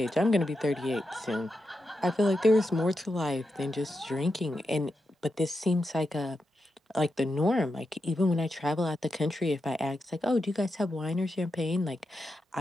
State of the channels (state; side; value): normal; both; correlation 0.87